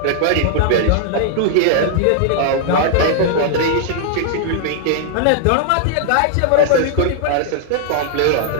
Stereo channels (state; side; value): different; both; correlation -0.01